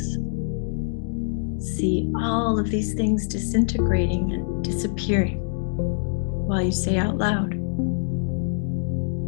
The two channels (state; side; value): silent; right; digital silence